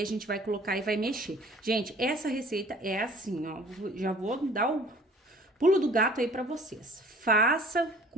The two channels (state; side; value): normal; both; correlation 0.51